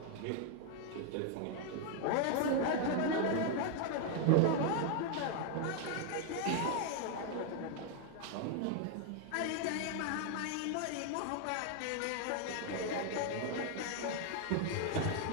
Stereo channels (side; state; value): both; different; correlation 0.00